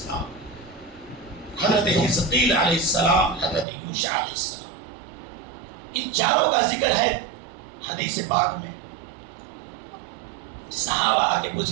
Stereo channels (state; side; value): drops out; left; at 3.7 s